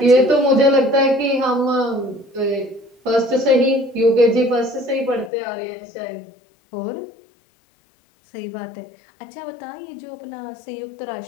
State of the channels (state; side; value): drops out; right; at 5.3 s